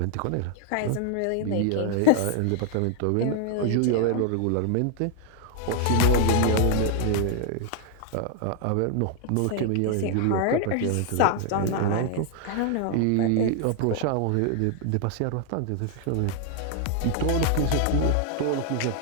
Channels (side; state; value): both; different; correlation 0.00